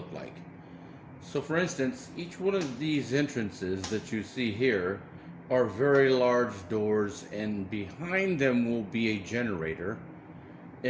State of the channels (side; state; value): both; identical; correlation 1.00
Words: like. So for instance, each one of these entrances that you see here are very large doors, and behind them will be a generator,